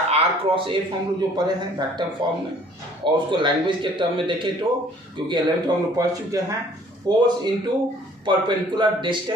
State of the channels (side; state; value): both; normal; correlation 0.56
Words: क्रॉस एफ हम लोग जो पढ़े हैं वेक्टर फॉर्म में, और उसको लैंग्वेज के टर्म में देखें तो, क्योंकि 11th में हम लोग पढ़ चुके हैं, फोर्स इनटू परपेंडिकुलर